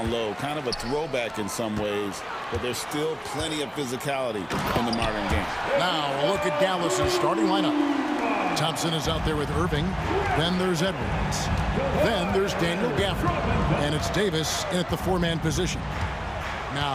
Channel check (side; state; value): both; identical; correlation 1.00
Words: low. Kind of a throwback in some ways, but there's still plenty of physicality in the modern game. Now, a look at Dallas's starting lineup. Thompson is out there with Irving. Then there's Edwards. Then there's Daniel Gafford. And it's Davis in at the four-man position.